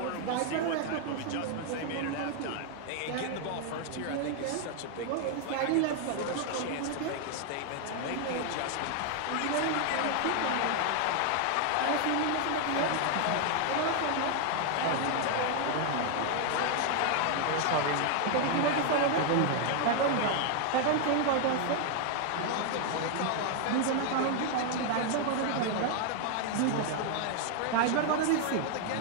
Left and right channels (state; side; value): different; both; correlation 0.00